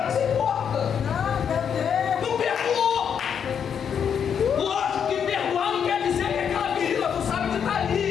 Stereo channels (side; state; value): right; quieter; 7.7 dB